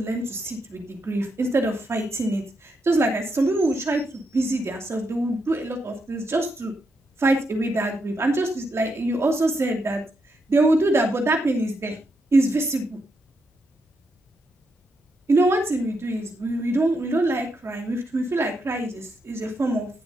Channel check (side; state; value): both; normal; correlation 0.81